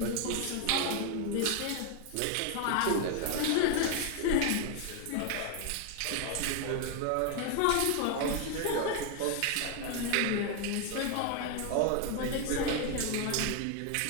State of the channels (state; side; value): different; both; correlation 0.01